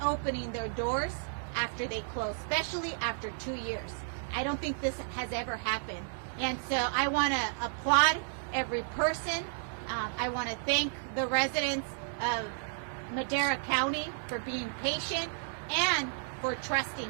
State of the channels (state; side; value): silent; left; digital silence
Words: their doors after they closed, especially after 2 years. I don't think this has ever happened. And so I want to applaud every person. I want to thank the residents of Madera County for being patient and for